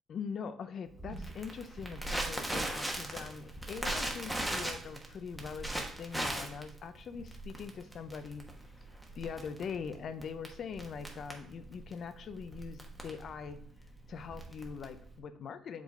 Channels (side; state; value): both; normal; correlation 0.79